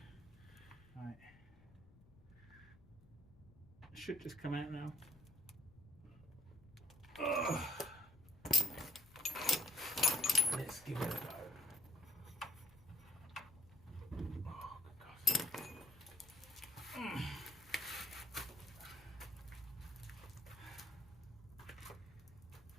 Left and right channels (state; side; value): noise; left; rumble, 23 dB below the sound